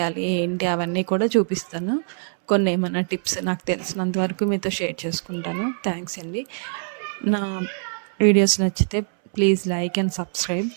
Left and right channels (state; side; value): silent; left; 63 dB below the other